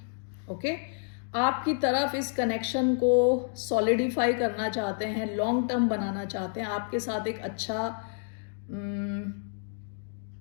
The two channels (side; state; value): right; silent; digital silence